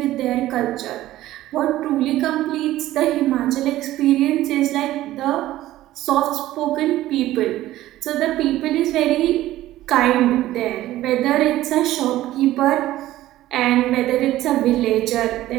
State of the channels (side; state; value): left; quieter; 15.0 dB